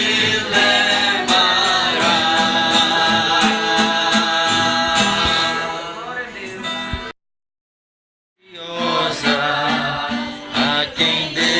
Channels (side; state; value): both; identical; correlation 1.00